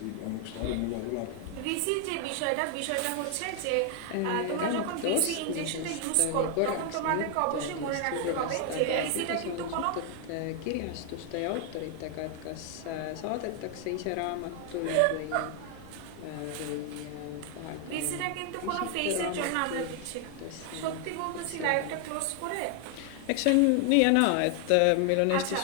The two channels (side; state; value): both; different; correlation 0.00